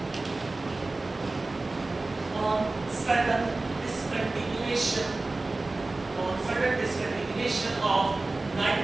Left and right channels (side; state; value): left; quieter; 3.2 dB